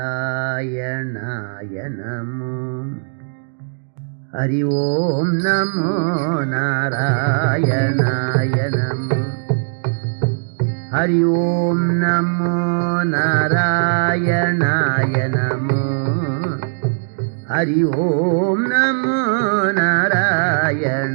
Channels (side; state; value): left; silent; digital silence